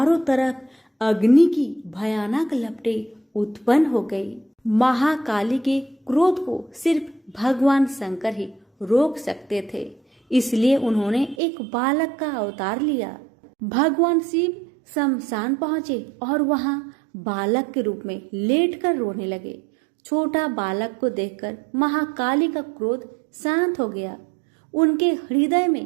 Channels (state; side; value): drops out; left; at 11.4 s